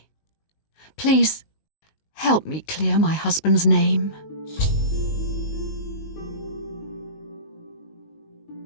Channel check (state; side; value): late; right; 19 ms